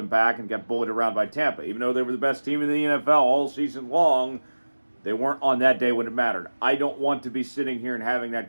back and got bullied around by Tampa. Even though they were the best team in the NFL all season long, they weren't on that day when it mattered. I don't want to be sitting here and having that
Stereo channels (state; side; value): inverted; both; correlation -1.00